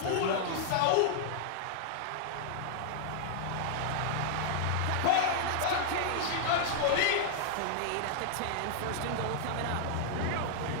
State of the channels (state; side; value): different; both; correlation -0.01